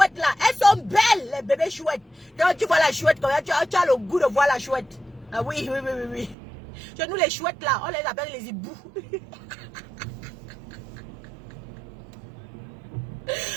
là, elles sont belles, les bébés chouettes. Quand tu vois la chouette, quand tu as le goût de voir la chouette. Ah oui. Chez nous, les chouettes là, on les appelle les hiboux.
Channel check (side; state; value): left; drops out; at 6.4 s